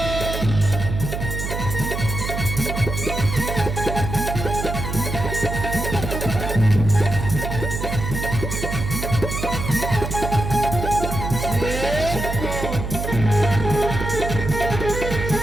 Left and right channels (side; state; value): right; noise; hum, 4 dB below the sound